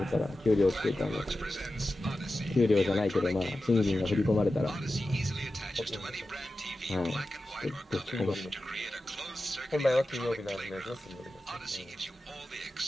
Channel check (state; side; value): normal; both; correlation 0.93